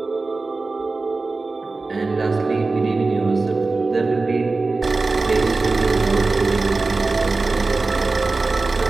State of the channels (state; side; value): quieter; left; 3.6 dB